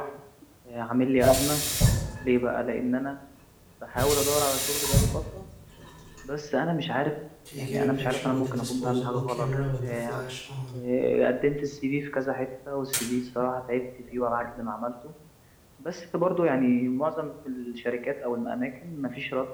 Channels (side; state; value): both; identical; correlation 1.00